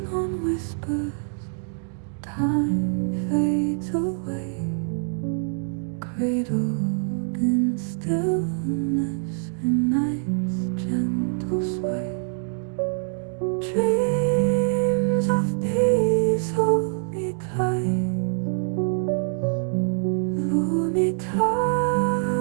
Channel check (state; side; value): silent; left; 62 dB below the other